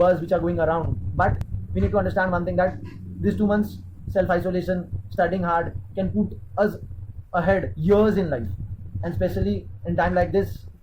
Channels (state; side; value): identical; both; correlation 1.00